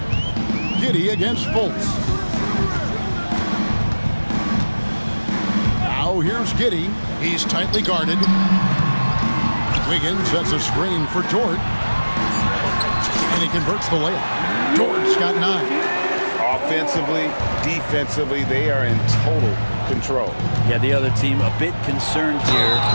Giddey against Fultz. Now here's Giddey. He's tightly guarded. Wiggins sets a screen for Dort. And he converts the layup. Dort's got 9. Offensively, defensively, they are in total control. Yeah, the other team a bit concerned here.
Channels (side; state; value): both; inverted; correlation -1.00